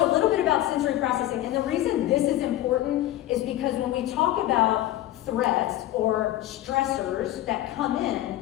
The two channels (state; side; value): quieter; right; 14.4 dB